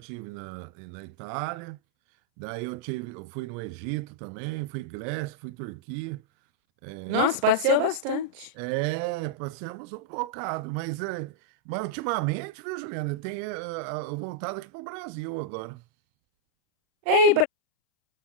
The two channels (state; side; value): late; left; 39 ms